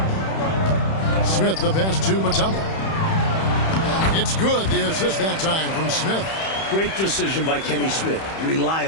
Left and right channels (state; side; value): late; right; 31 ms